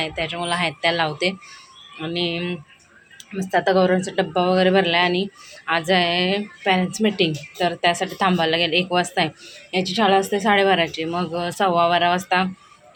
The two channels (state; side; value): identical; both; correlation 1.00